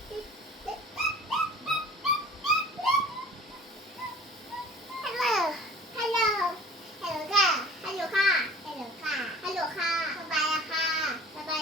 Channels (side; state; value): both; normal; correlation 0.46